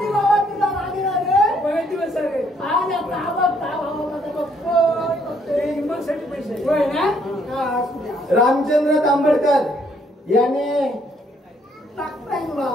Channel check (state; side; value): normal; both; correlation 0.68